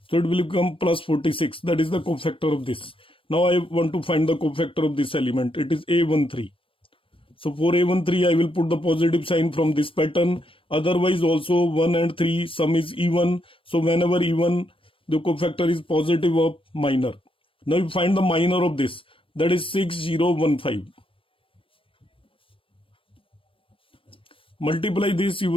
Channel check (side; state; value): right; late; 0.25 ms